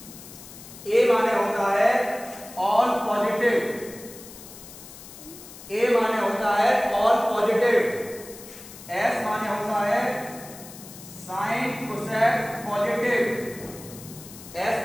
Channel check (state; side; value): noise; left; hiss, 16 dB below the sound